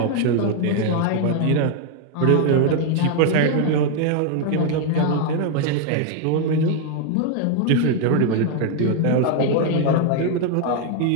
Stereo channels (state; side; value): different; both; correlation 0.00